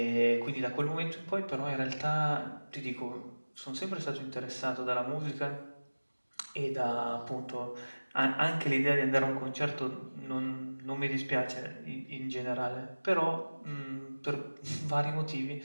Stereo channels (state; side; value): inverted; both; correlation -1.00